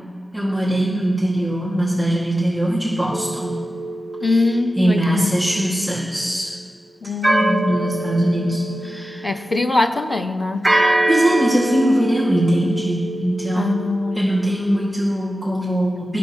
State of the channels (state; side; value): normal; both; correlation 0.93